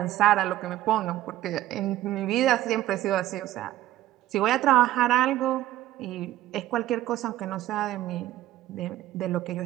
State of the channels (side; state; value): left; quieter; 14.4 dB